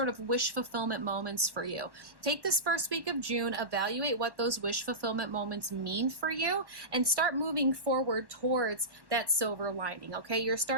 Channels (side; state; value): left; late; 1.1 ms